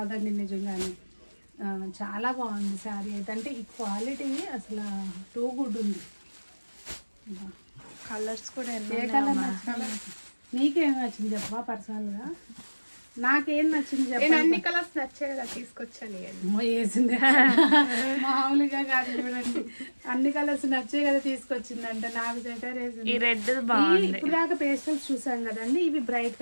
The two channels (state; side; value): inverted; both; correlation -1.00